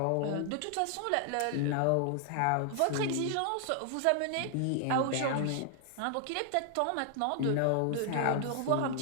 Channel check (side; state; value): both; different; correlation 0.00